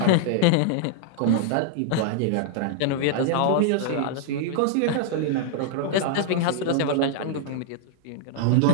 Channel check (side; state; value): both; different; correlation -0.01